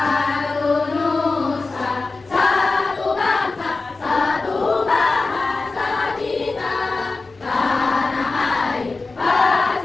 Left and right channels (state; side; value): quieter; right; 3.7 dB